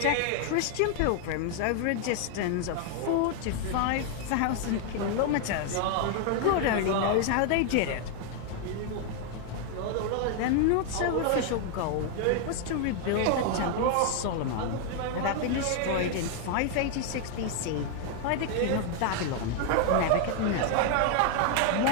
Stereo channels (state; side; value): different; both; correlation 0.00